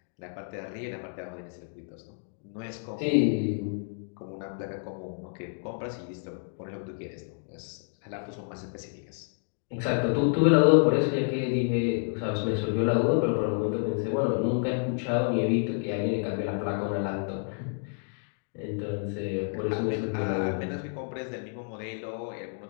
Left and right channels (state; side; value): silent; right; 58 dB below the other